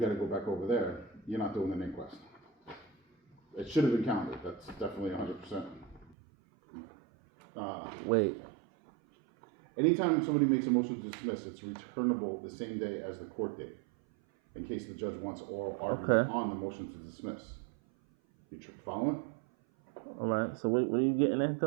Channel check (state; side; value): drops out; left; at 6.2 s